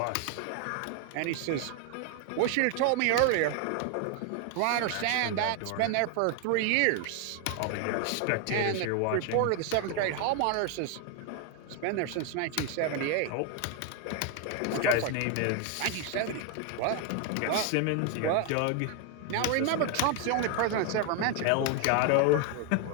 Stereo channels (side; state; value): both; different; correlation 0.01